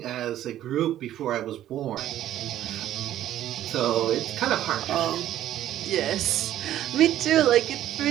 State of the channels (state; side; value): quieter; left; 12.4 dB